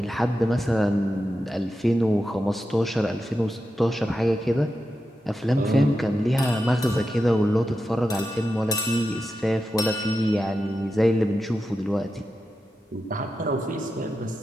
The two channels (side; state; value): both; normal; correlation 0.89